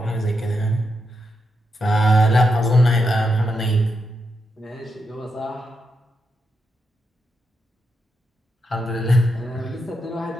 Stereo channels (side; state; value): both; normal; correlation 0.84